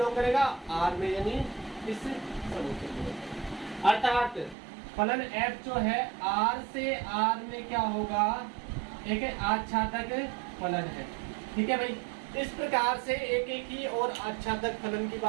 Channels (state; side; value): drops out; left; at 4.5 s